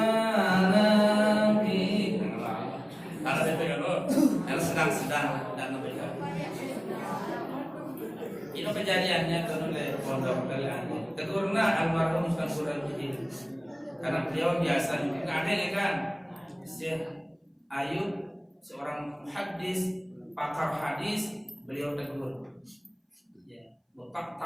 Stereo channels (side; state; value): both; identical; correlation 1.00